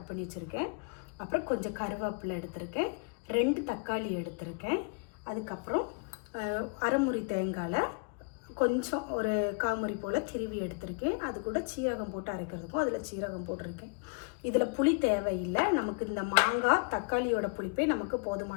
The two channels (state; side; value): quieter; right; 36.2 dB